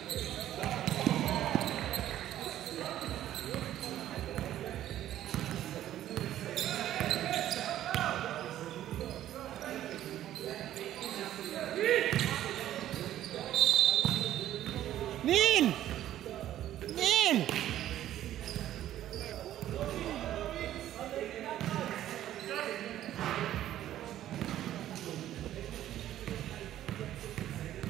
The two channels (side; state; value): left; quieter; 12.5 dB